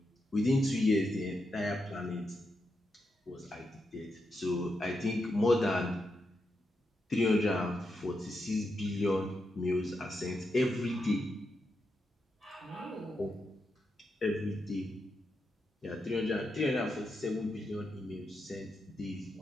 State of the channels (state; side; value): normal; both; correlation 0.85